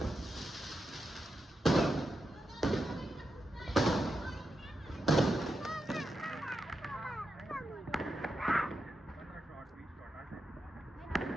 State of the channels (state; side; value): normal; both; correlation 0.87